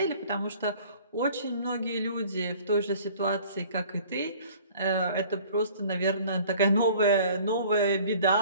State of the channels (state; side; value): inverted; both; correlation -0.50